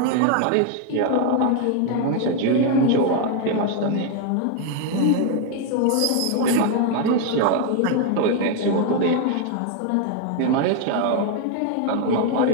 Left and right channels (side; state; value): both; different; correlation 0.01